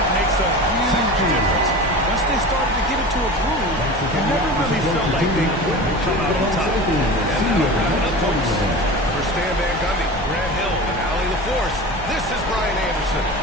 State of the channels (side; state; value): both; normal; correlation 0.33